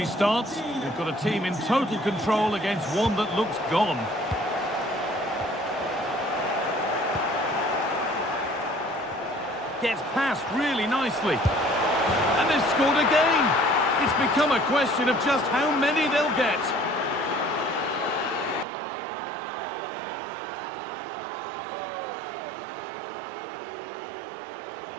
they've got a team in total control against one that looks gone. Gets past really nicely. And they've scored again. It's become a question of just how many they'll get.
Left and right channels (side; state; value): left; drops out; at 18.7 s